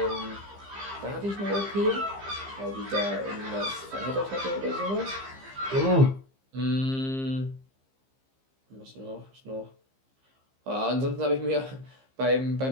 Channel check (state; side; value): late; left; 15 ms